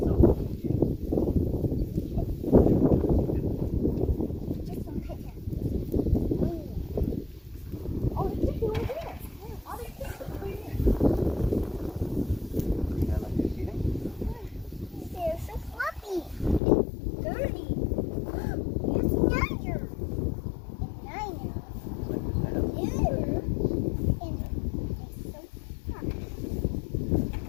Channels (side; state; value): right; drops out; at 16.6 s